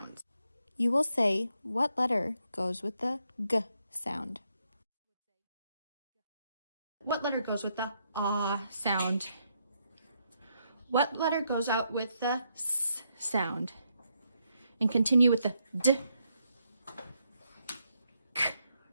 You will say what letter goes with the G sound. What letter goes with the ah sound? What letter goes out with the S sound? And continue with the D, K,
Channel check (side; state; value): both; inverted; correlation -0.78